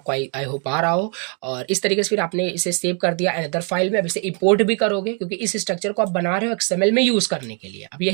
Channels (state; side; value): quieter; left; 38.4 dB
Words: आई होप आ रहा हो। और इस तरीके से फिर आपने इसे सेव कर दिया अनदर फाइल में। अब इसे इंपोर्ट भी करोगे क्योंकि इस स्ट्रक्चर को आप बना रहे हो XML में यूज करने के लिए। अब